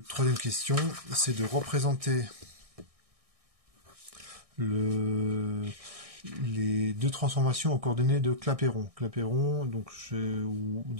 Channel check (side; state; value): left; late; 1.6 ms